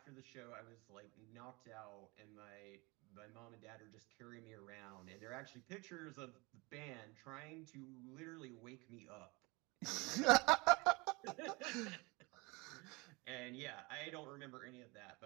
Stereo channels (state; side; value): quieter; left; 26.1 dB